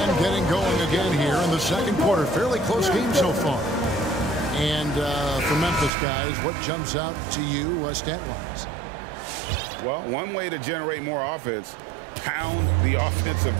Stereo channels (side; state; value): left; drops out; at 5.9 s